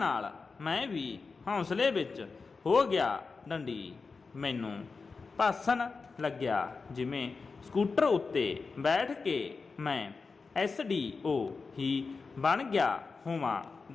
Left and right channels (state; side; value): quieter; right; 4.5 dB